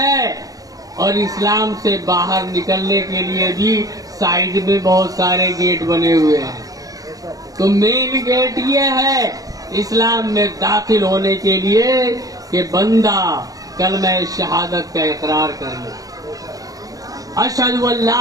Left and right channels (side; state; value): left; late; 0.17 ms